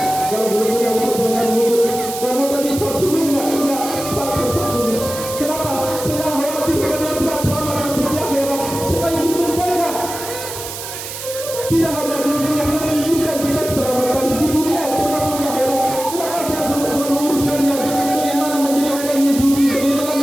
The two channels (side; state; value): right; noise; hiss, 9 dB below the sound